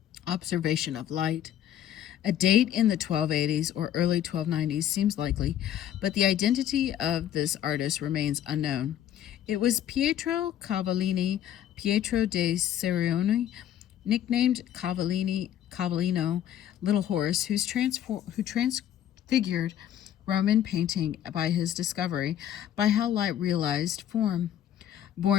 observation of light. A date in the 1280s or early 1290s seems likely, but the identity of this artist remains unknown. It was Pietro de Cerioni, nicknamed Cavallino, Little Horse, who transfigured Roman painting by his discovery by how light realized form.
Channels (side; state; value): right; quieter; 10.8 dB